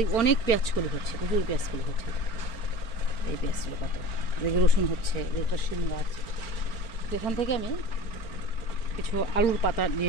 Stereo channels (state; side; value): late; right; 4.4 ms